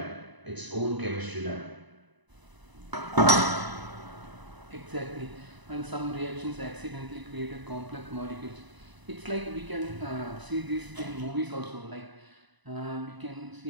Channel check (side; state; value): left; late; 1.0 ms